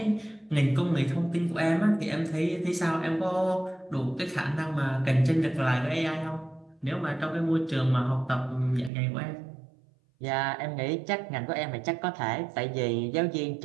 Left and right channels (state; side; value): drops out; left; at 8.9 s